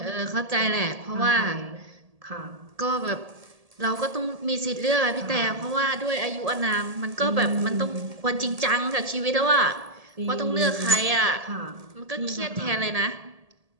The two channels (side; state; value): left; late; 1.7 ms